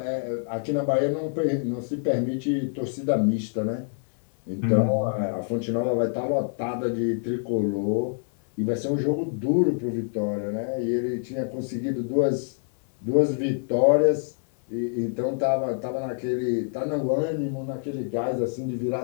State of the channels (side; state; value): right; silent; 61 dB below the other